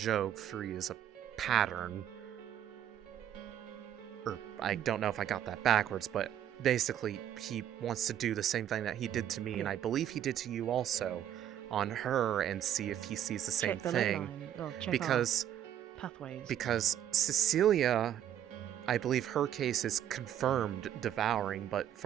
3 is a pattern. Or I don't know if I got that backwards, but basically he wants to do the same thing that he did to me, and I believe he did to you also, on her, and see if he sees the same Check the thing. ley line. Well, check Because our pathways. because Cecilia, I believe her case is confirmed devouring, but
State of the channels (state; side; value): quieter; left; 10.6 dB